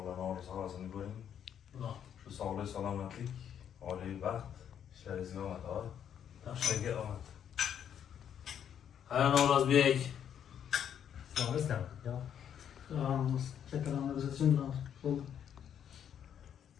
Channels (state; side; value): quieter; right; 9.0 dB